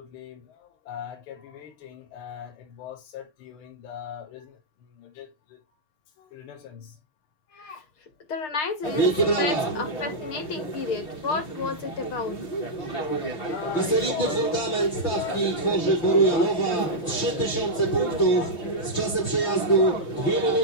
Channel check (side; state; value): right; late; 5.8 ms